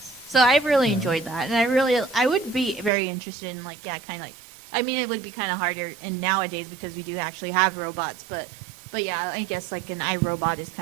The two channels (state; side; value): drops out; left; at 2.9 s